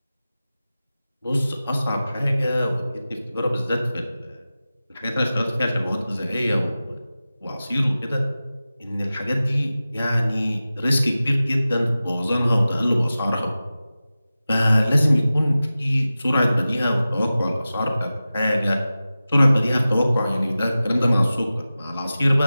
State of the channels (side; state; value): both; inverted; correlation -0.95